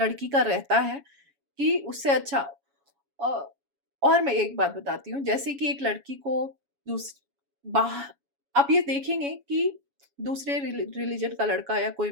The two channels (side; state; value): left; late; 7.2 ms